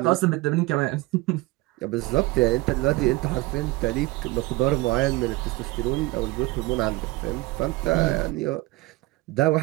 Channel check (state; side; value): quieter; left; 20.5 dB